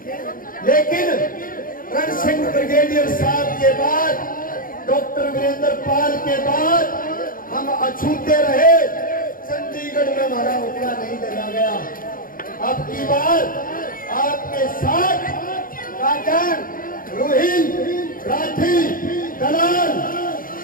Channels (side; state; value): right; late; 0.41 ms